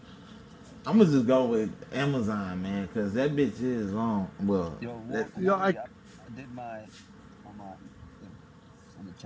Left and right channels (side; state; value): both; identical; correlation 1.00